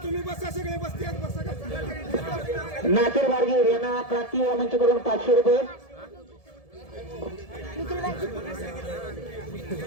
तुम्ही बसा सगळे बसते नासिर वारगीर यांना क्रांती मंचकडून 500 रुपये.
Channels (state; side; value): late; right; 1.7 ms